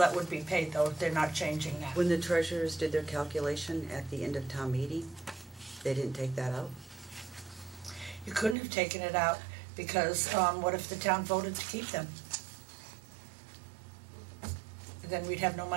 would be paid, though. They're not changing that. When the treasurers did their calculation at the end of town meeting, they didn't take that out? You couldn't have taken it out because what if the town voted to keep them? Then we'd have no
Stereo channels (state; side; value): drops out; left; at 8.6 s